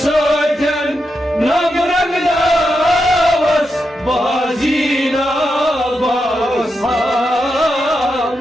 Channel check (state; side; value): normal; both; correlation 0.86